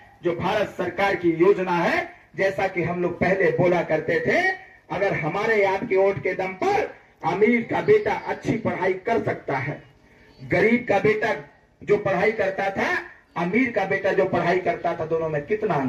जो भारत सरकार की योजना है, जैसा कि हम लोग पहले बोला करते थे, अगर हमारे आपके वोट के दम पर अमीर का बेटा अच्छी पढ़ाई कर सकता है, गरीब का बेटा जो पढ़ाई करता था, अमीर का बेटा जो पढ़ाई करता था, दोनों में कितना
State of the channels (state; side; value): identical; both; correlation 1.00